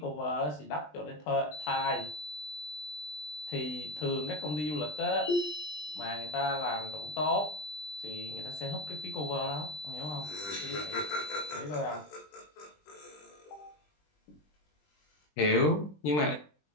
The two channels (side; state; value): right; late; 20 ms